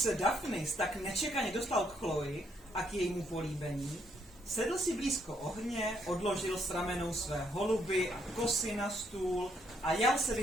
Daphnis tak nečekaně dostal k Chloe a k jejímu políbení, sedl si blízko ohně, odložil s ramenou své holuby a kosy na stůl a jal se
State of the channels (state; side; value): normal; both; correlation 0.72